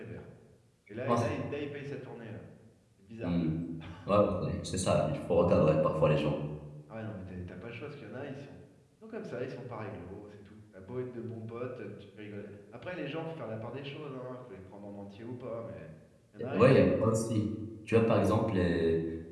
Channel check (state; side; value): identical; both; correlation 1.00